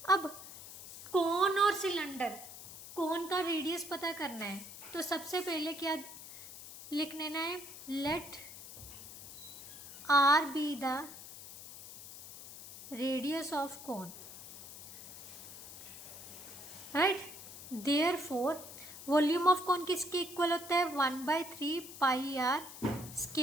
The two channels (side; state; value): left; noise; hiss, 13 dB below the sound